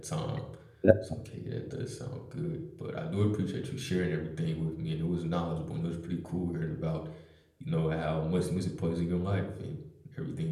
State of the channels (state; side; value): identical; both; correlation 1.00